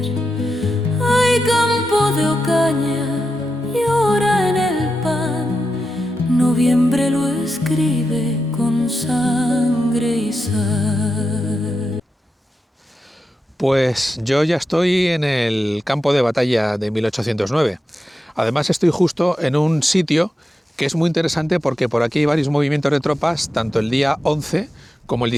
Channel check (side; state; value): both; normal; correlation 0.89